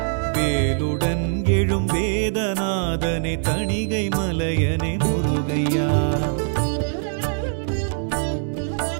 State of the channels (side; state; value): left; silent; digital silence